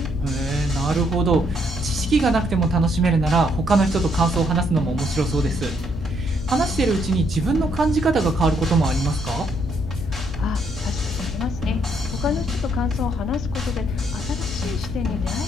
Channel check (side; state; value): left; noise; hum, 8 dB below the sound